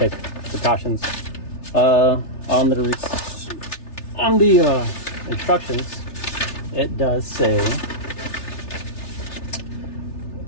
precautions. On the instructions, it does say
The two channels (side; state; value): right; late; 3.3 ms